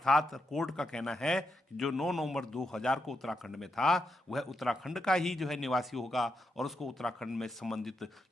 कोर्ट का कहना है कि जो 9 नवंबर 2000 को उत्तराखंड में था वह उत्तराखंड का ही जो है निवासी होगा और उसको उत्तराखंड में संबंधित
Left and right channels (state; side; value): normal; both; correlation 0.83